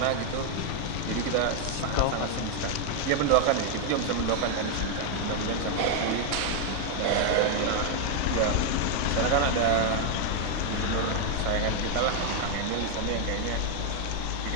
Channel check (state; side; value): different; both; correlation 0.00